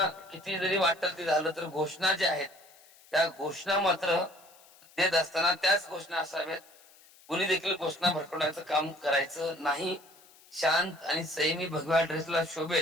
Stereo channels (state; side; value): noise; left; hiss, 26 dB below the sound